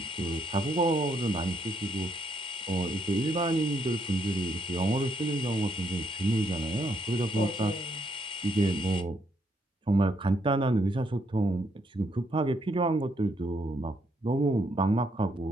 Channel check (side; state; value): both; normal; correlation 0.74